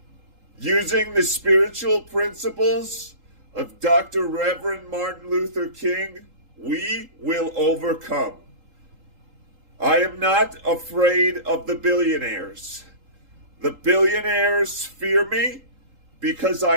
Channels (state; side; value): late; left; 3.8 ms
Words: using the spiritual principles of Dr. Reverend Martin Luther King. We will overcome. I am not afraid of the billionaires. The billionaires fear me because